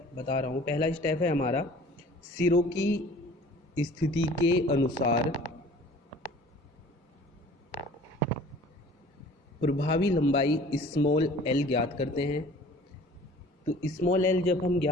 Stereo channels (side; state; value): both; normal; correlation 0.48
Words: बता रहा हूँ। पहला स्टेप है हमारा सिरों की स्थिति के अनुसार प्रभावी लंबाई स्मॉल एल ज्ञात करते हैं। तो स्मॉल एल जब हम